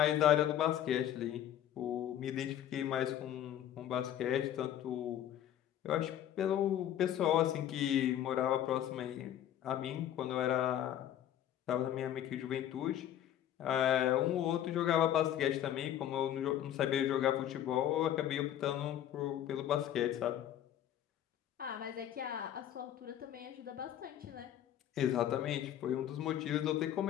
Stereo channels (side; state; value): right; quieter; 11.1 dB